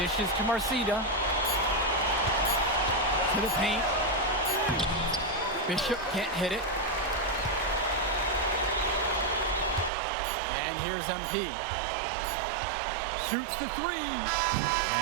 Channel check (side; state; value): left; drops out; at 9.9 s